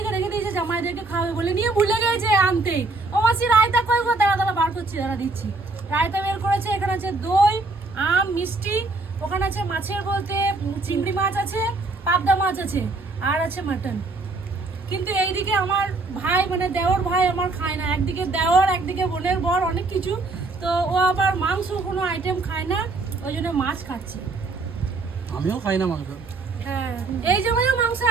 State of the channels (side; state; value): left; quieter; 3.4 dB